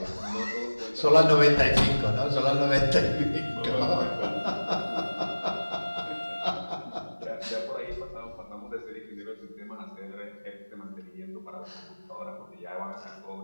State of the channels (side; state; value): both; inverted; correlation -1.00